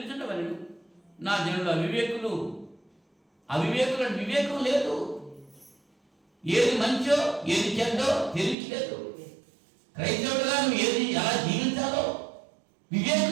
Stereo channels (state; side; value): drops out; left; at 8.6 s